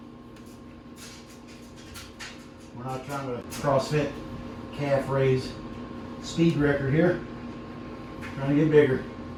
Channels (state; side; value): identical; both; correlation 1.00